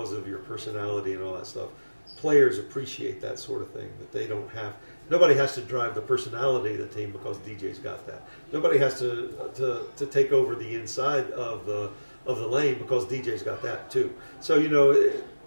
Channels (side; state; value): both; inverted; correlation -1.00